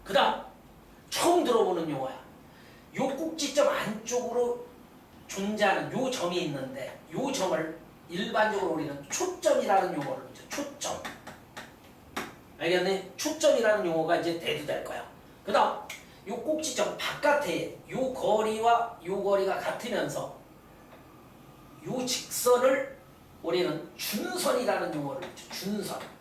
그 다음 처음 들어보는 용어야. 요 꼭지점 안쪽으로 존재하는 요 점이 있는데 요 점을 일반적으로 우리는 초점이라는 용어를 붙여. 초점. 알겠네? 초점이라는 용어가 이제 대두될 거야. 그 다음 요 꼭지점 바깥에 요 거리와 요 거리가 같으면서 요 직선을 우리는 준선이라는 용어를 붙여.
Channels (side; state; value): both; identical; correlation 1.00